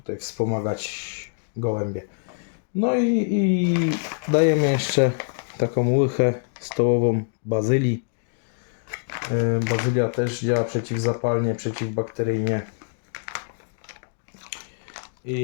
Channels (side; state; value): right; silent; digital silence